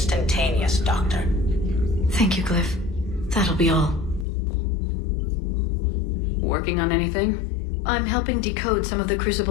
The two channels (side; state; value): right; drops out; at 4.2 s